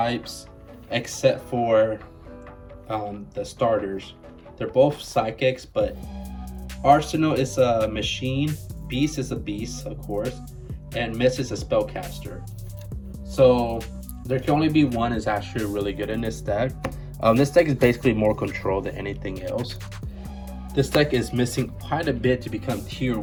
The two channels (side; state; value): both; identical; correlation 1.00